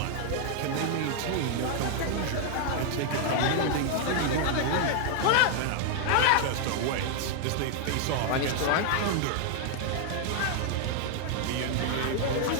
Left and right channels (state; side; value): different; both; correlation 0.00